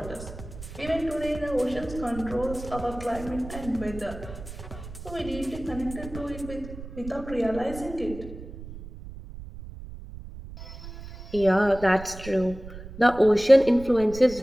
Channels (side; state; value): right; noise; rumble, 13 dB below the sound